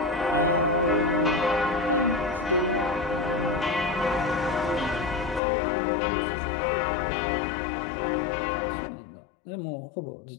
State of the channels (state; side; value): drops out; right; at 5.4 s